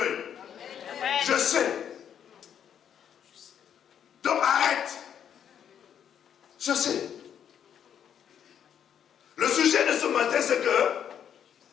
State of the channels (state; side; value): quieter; right; 8.9 dB